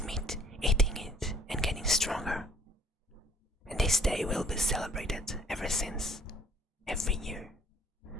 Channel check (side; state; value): both; normal; correlation 0.58